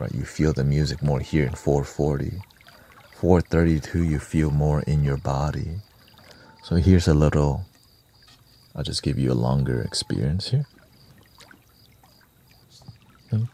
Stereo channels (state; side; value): identical; both; correlation 1.00